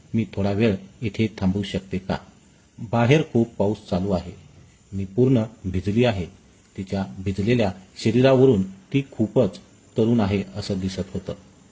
मी थोडा वेळ इथे थांबू शकते का? बाहेर खूप पाऊस चालू आहे. मी पूर्ण भिजली आहे. तिच्या भिजलेल्या शरीरावरून ती खूपच तरुण आहे असं दिसत होतं.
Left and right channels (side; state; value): both; identical; correlation 1.00